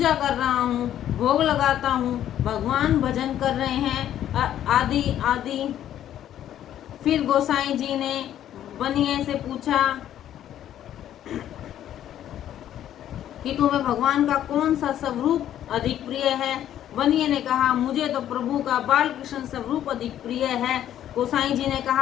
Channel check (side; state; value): right; quieter; 11.3 dB